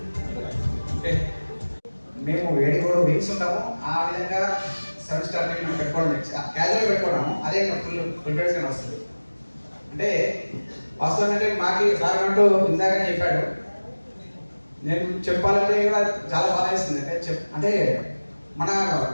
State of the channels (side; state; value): both; inverted; correlation -1.00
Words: మేము 7 వీక్స్ ఉంటాము. ఆ విధంగా 7 స్టార్ మేము పెట్టుకోవడం క్యాజువల్ పెట్టుకోవడము అదే ఫుల్ ప్రిపరేషన్ వస్తుంది. అంటే వాస్తవం అంటే మాకు సార్ అంటూ ఇందాకనే చెప్పాడు. నేను చెప్పాలంటే కూడా చాలా బాగా వేస్తుంది. అంటే మన